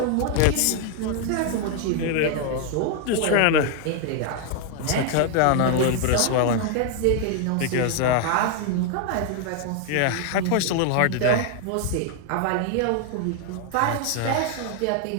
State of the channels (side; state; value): both; different; correlation 0.00